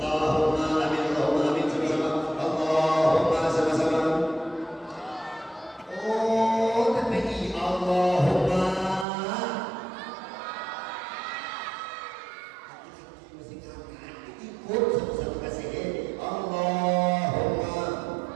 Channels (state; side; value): drops out; left; at 9.1 s